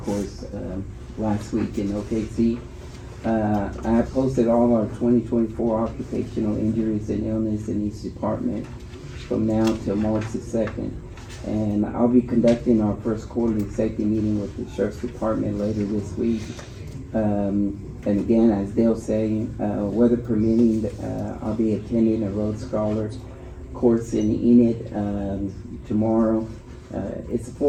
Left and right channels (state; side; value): identical; both; correlation 1.00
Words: course last week in OKC. I posted all our 2024 occupational injuries and illness in each department from now till March the 2nd. And I'll be conducting our first quarterly safety meeting with the Sheriff's Department later this week. And again, as Dale saying, weather permitting, I'll be attending a Road Scholar course in Enid tomorrow. It's a